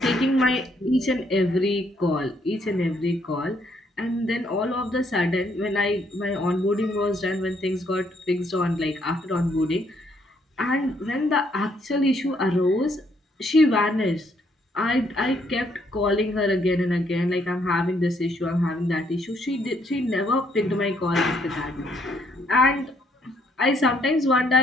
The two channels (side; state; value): both; normal; correlation 0.70